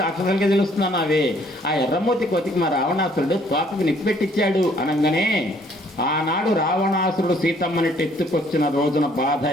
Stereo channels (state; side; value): normal; both; correlation 0.62